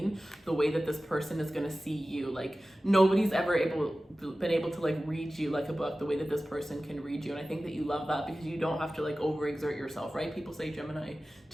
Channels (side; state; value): both; normal; correlation 0.96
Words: the way that this person is going to see you. Like, nobody's ever been able to like read you like a book the way that this person can read you. And I think that you love that because you don't have to like overexert yourself, right? People say Gemini,